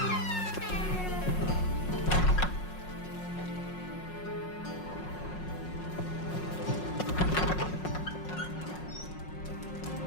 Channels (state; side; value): late; right; 5.5 ms